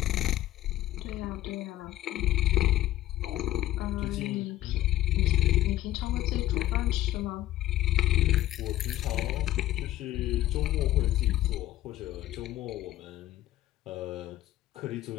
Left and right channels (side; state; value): right; quieter; 14.5 dB